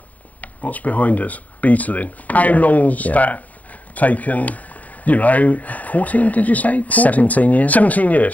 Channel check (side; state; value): right; late; 0.073 ms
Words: what's behind us? Beetling. How long's that taken? You know, 14, did you say? 14? 17 years. 17